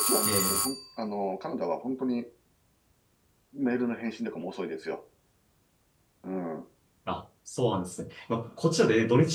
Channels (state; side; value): identical; both; correlation 1.00